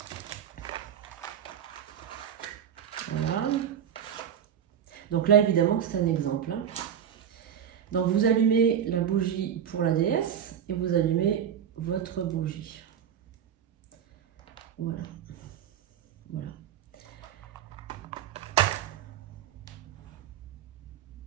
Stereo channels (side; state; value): left; quieter; 9.0 dB